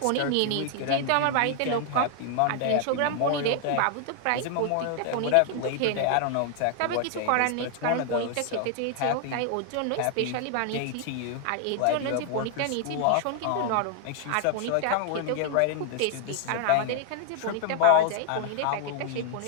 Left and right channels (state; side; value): different; both; correlation 0.00